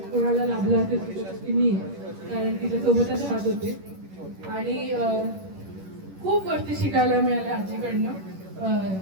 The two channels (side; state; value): left; late; 11 ms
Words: कोणाला लाभला असेल ती मी, कारण तिच्यासोबतच राहत होते आणि खूप गोष्टी शिकायला मिळाल्या आजीकडनं.